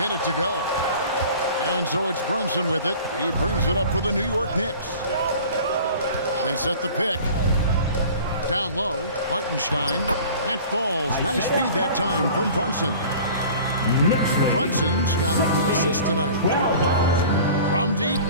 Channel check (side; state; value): both; inverted; correlation -0.43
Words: it to go. And so it's Brunson with it. He brings it up for the New York Knicks. They set the pick. Down low, Hartenstein. That falls. Nice feed that time from Brunson. Brunson's got 3 assists tonight. From deep,